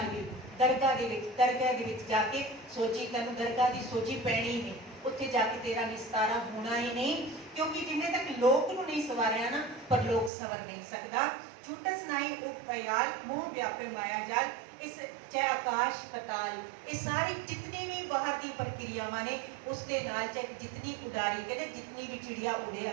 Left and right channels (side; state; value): left; drops out; at 10.3 s